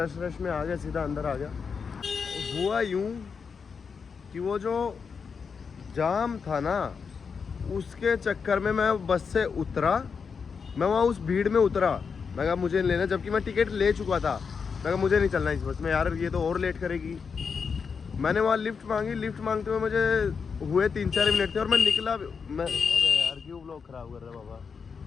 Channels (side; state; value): right; quieter; 5.8 dB